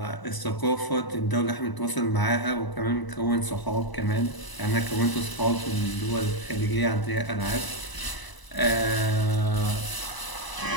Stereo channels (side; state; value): right; late; 1.0 ms